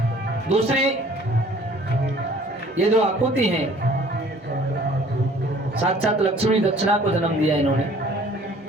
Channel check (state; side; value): normal; both; correlation 0.53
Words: दूसरी, ये जो आकुति हैं, साक्षात लक्ष्मी दक्षिणा को जन्म दिया इन्होंने।